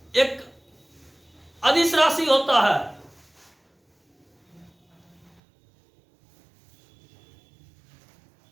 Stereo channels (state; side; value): drops out; left; at 5.4 s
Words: एक अदिश राशि होता है।